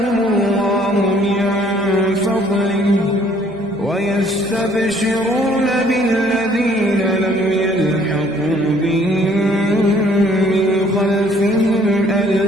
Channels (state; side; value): noise; right; hum, 25 dB below the sound